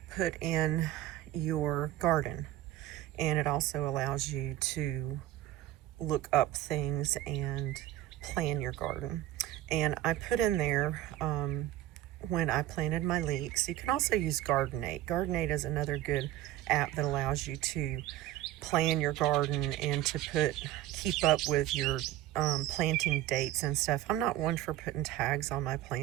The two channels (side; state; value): left; quieter; 14.2 dB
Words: put in your garden, and it also allows you to look up things and plan your garden. And I put in there when I planted my leeks. You can also use Gardenate. Gardenate is another good app that allows you to plan your garden and to keep up with your planting dates and stuff. I'm not one for putting tags on my